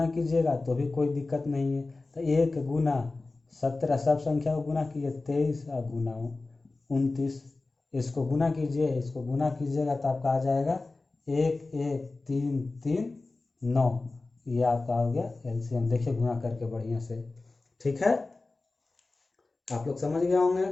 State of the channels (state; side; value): quieter; right; 3.4 dB